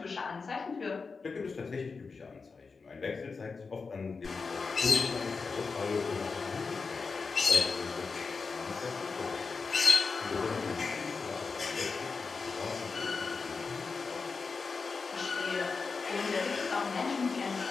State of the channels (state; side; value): quieter; right; 4.7 dB